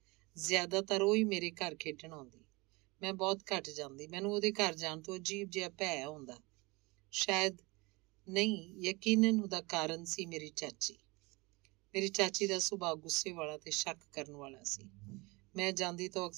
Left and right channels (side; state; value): left; quieter; 25.1 dB